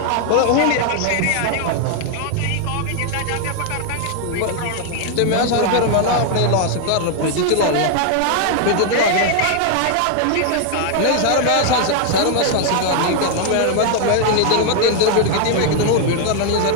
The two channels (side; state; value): both; different; correlation 0.00